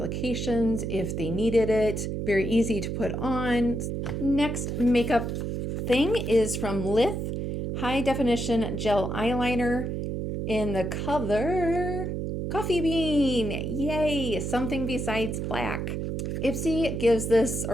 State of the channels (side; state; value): right; noise; hum, 3 dB below the sound